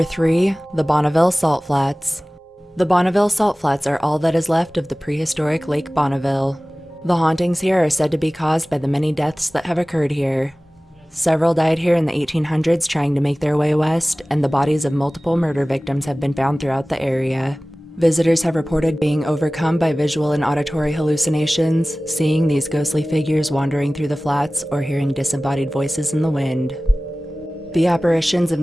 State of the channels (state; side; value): normal; both; correlation 0.98